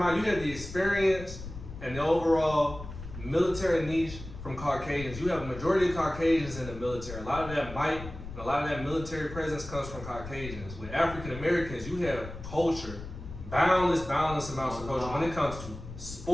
you have the experience and the overall military niche from Caucasians. You have a majority of Caucasians in the military. A lot of that might, and a lot of that military presence comes from Caucasians. With African Americans, you have culture, boundless amounts of culture when it comes to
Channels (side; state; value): left; noise; rumble, 12 dB below the sound